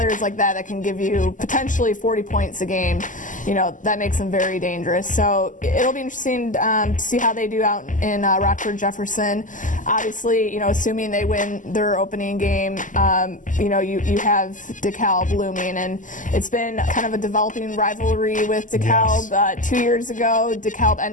like that can give you potentially 40 points a game, that makes them very dangerous. So it'll be interesting to see how they do out in Rockford Jefferson. Obviously, assuming they win their opening game, you have DeKalb looming, and it's been kind of a developing rivalry with DeKalb. Yes. 2 years ago, DeKalb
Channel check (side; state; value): right; late; 0.37 ms